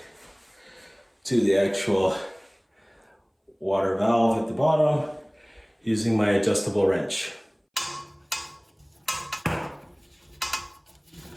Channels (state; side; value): identical; both; correlation 1.00